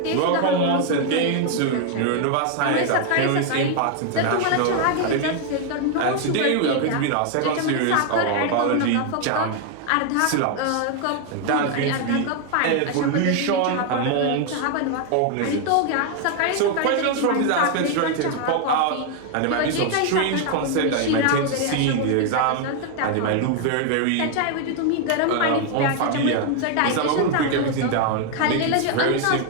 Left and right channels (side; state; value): both; different; correlation 0.00